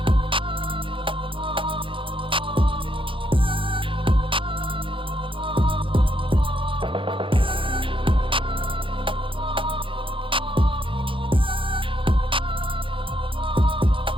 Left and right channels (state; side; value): late; left; 0.25 ms